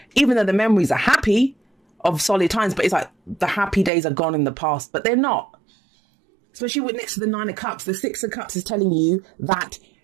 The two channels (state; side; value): drops out; left; at 3.9 s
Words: Even though the memories are happy of solid times, but it's like the happy days are gone in the past, but they're not. Especially with next to the Nine of Cups, the Six of Cups is telling you that